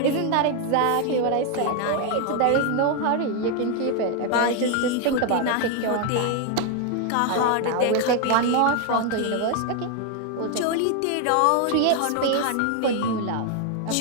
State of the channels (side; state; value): both; different; correlation 0.01